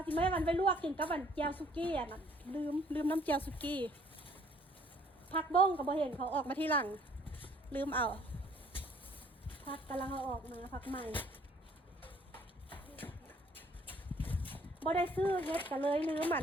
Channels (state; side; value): normal; both; correlation 0.60